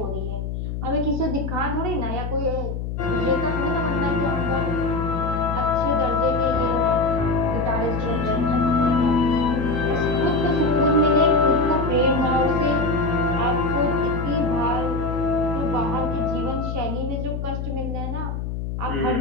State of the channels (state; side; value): noise; left; hum, 4 dB below the sound